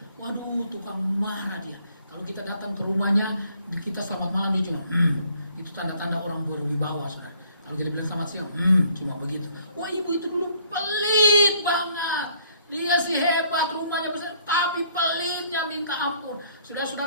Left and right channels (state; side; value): inverted; both; correlation -0.63